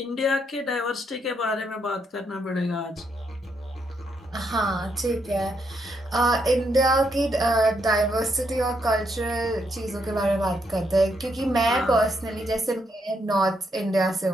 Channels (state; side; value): normal; both; correlation 0.77